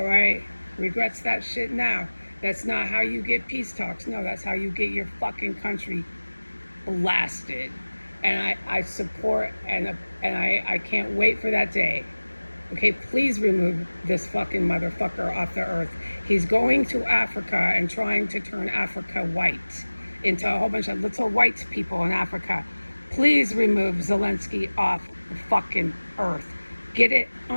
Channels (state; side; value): inverted; both; correlation -1.00